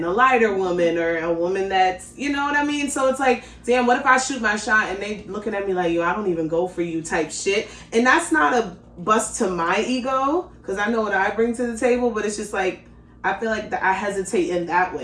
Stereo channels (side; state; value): both; identical; correlation 1.00